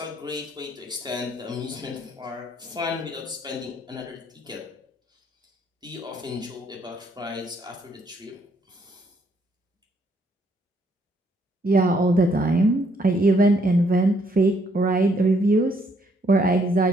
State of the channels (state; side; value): normal; both; correlation 0.69